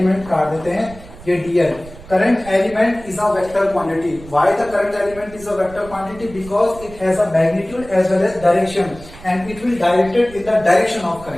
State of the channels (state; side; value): noise; right; rumble, 18 dB below the sound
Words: काट देते हैं, ये D L. Current element is a vector quantity. Why the current element is a vector quantity? Because it has a magnitude as well as direction and it will directed in the direction of